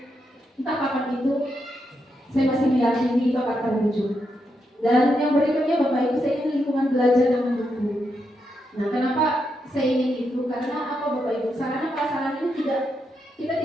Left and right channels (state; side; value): normal; both; correlation 0.82